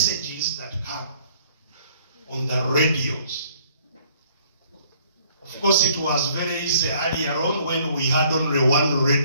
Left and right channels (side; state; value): both; inverted; correlation -0.60